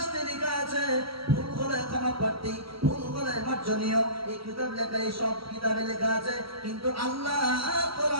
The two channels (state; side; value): late; left; 0.75 ms